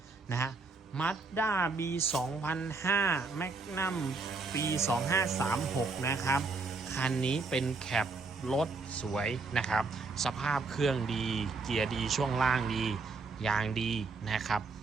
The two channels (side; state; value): left; quieter; 4.0 dB